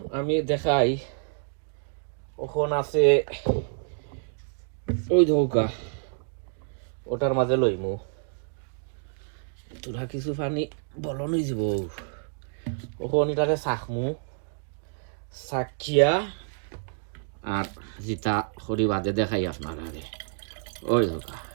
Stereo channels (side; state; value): left; silent; digital silence